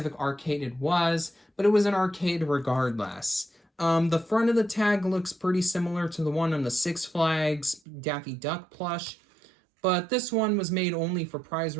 arcade it was, but it was an arcade regardless. The front of the tag looks pretty similar to the one on the Six Flags Daffy Duck plush, but this one was made only for prize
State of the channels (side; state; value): left; drops out; at 7.8 s